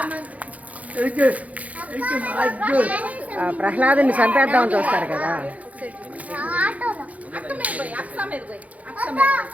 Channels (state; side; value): late; left; 0.070 ms